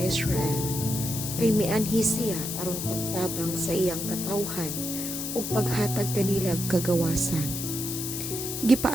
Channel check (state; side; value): noise; left; hiss, 5 dB below the sound